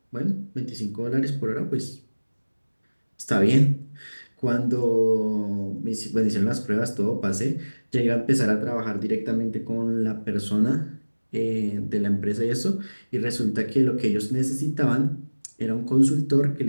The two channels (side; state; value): both; inverted; correlation -1.00